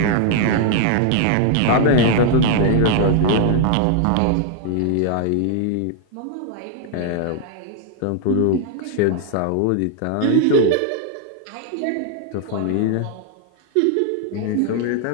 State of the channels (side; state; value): both; different; correlation 0.00